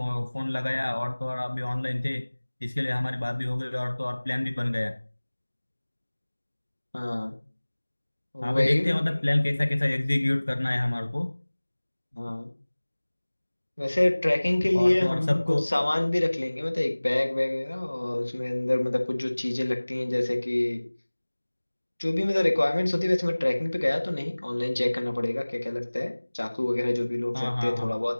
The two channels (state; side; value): inverted; both; correlation -1.00